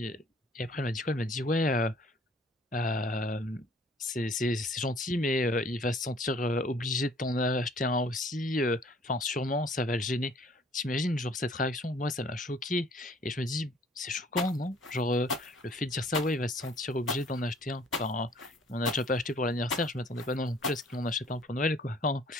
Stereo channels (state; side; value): normal; both; correlation 0.56